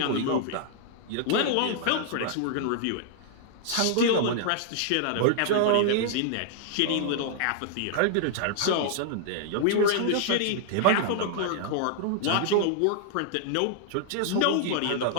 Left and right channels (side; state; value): both; different; correlation -0.01